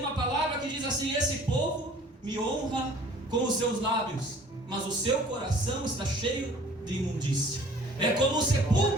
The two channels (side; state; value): both; normal; correlation 0.51